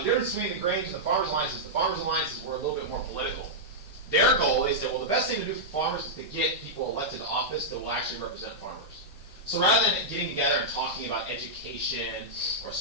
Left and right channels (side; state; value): both; normal; correlation -0.09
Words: difference between the Granger and the farmers' alliances were a little bit more political. Their goal, they said, well, the best thing to do for farmers is to get people elected to office that will actually represent farmers. So rather than getting together and talking about education or